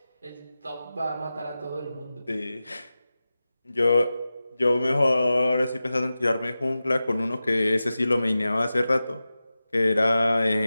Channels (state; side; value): inverted; both; correlation -0.94